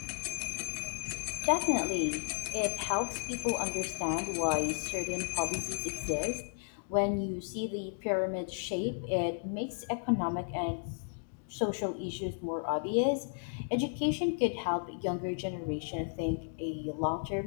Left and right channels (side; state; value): right; silent; digital silence